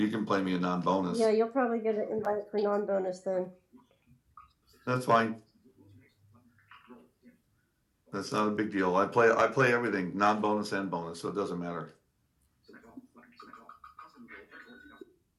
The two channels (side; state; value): both; identical; correlation 1.00